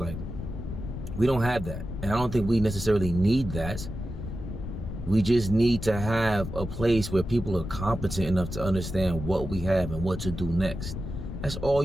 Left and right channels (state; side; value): noise; left; rumble, 7 dB below the sound